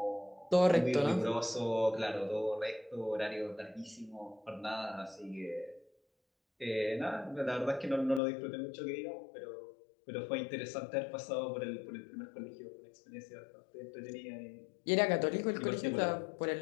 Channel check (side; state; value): right; drops out; at 8.2 s